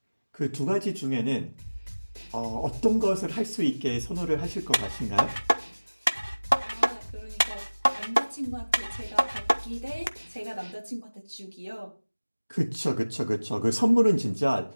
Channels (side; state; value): both; inverted; correlation -1.00